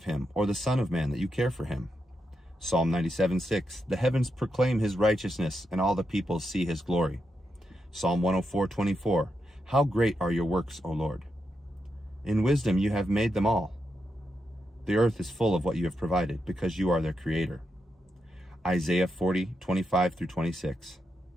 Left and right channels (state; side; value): normal; both; correlation 0.85